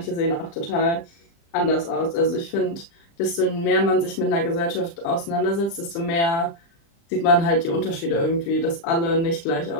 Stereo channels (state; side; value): late; right; 35 ms